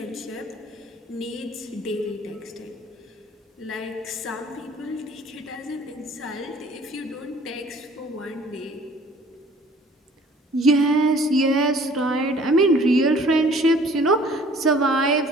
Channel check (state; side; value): normal; both; correlation 0.53